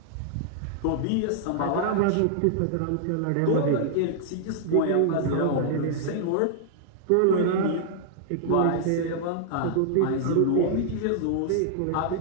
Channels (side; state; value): both; different; correlation -0.01